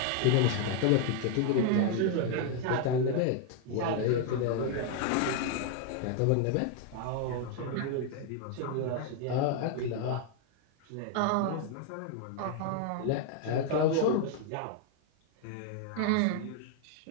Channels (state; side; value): different; both; correlation 0.00